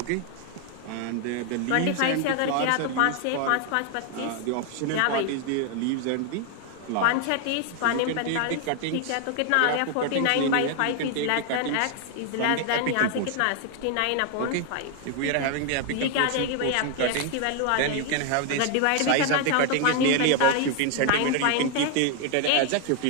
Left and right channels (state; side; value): different; both; correlation 0.01